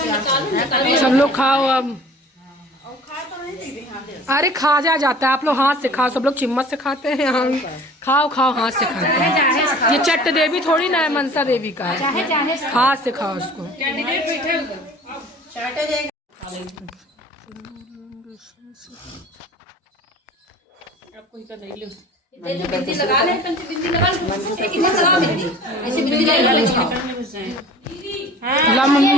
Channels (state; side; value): normal; both; correlation 0.45